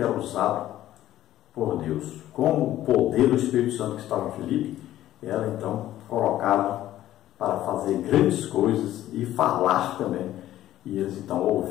usado por Deus, como o poder do Espírito Santo que estava em Filipe era então colocado para fazer grandes coisas e falar também. E eles então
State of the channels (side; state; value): right; quieter; 13.4 dB